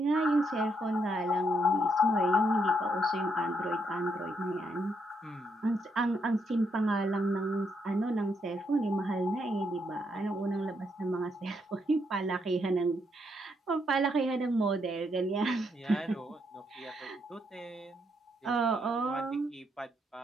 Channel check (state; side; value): normal; both; correlation 0.76